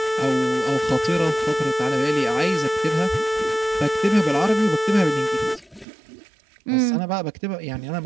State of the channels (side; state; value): left; drops out; at 5.9 s